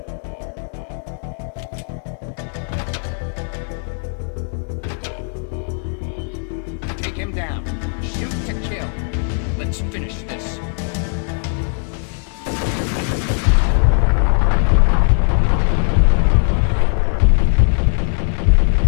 Take him down. Shoot to kill. Let's finish this.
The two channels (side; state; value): right; silent; 60 dB below the other